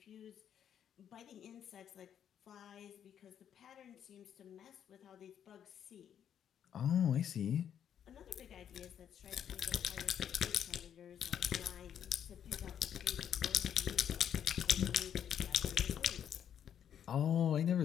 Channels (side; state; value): right; quieter; 9.2 dB